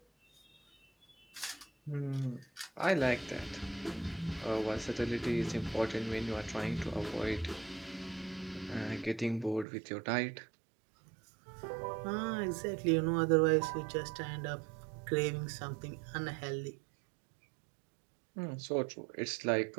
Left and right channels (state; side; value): drops out; left; at 9.7 s